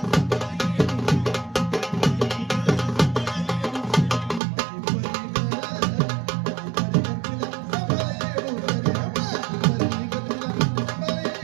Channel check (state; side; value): drops out; left; at 4.4 s